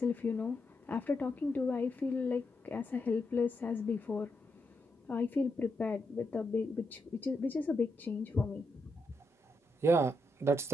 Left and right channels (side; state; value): both; normal; correlation 0.83